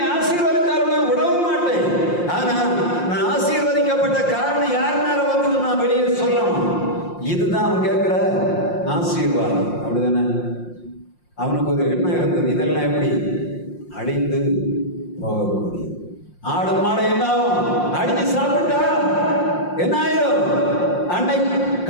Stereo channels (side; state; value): right; late; 5.7 ms